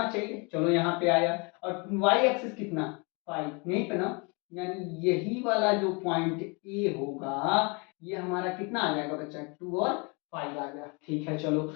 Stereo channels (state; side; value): quieter; right; 31.3 dB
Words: चाहिए, चलो यहाँ पे आया, और वाई एक्सिस कितना 5, यहीं पे ना, यानी यही वाला जो पॉइंट ए होगा ये हमारा कितना आ जाएगा बच्चा, 2 और 5 आ गया। ठीक है, चलो